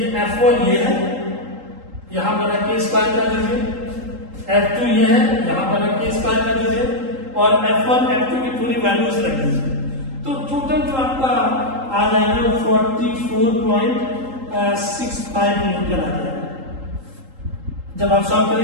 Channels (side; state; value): left; late; 3.8 ms